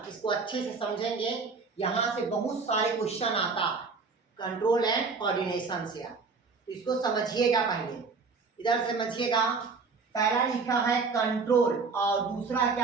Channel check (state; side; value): quieter; left; 4.6 dB